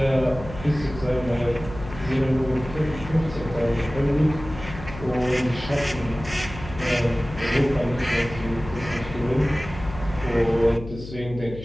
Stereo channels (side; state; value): left; noise; hum, 12 dB below the sound